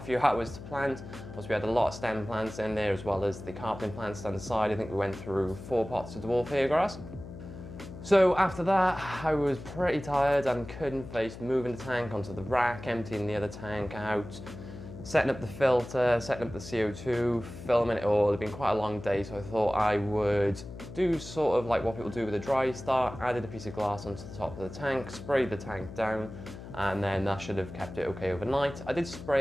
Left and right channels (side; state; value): left; noise; hum, 13 dB below the sound